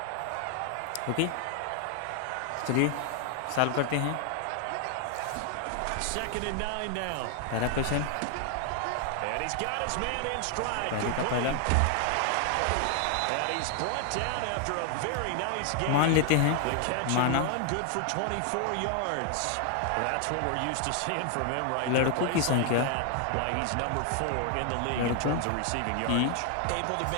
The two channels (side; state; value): both; different; correlation 0.00